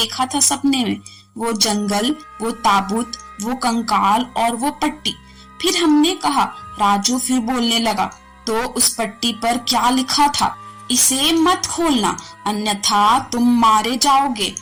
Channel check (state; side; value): identical; both; correlation 1.00